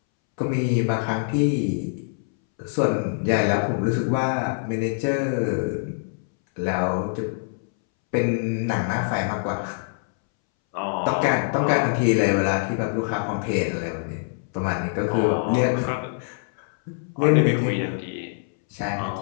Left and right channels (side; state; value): right; silent; 62 dB below the other